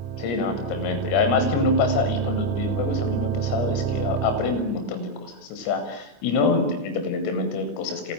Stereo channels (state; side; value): late; right; 25 ms